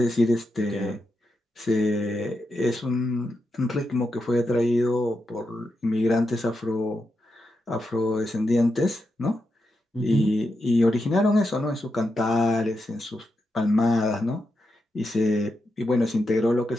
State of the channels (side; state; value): both; normal; correlation 0.86